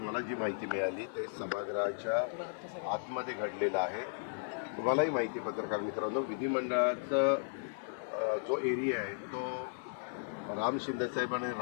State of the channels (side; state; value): right; silent; digital silence